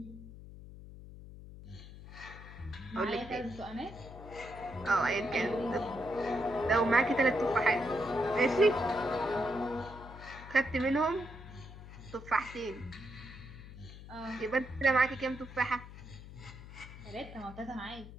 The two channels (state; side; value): noise; left; hum, 14 dB below the sound